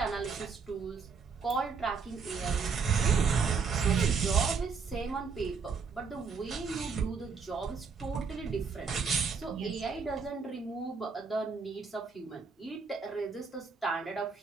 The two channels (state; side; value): quieter; left; 5.3 dB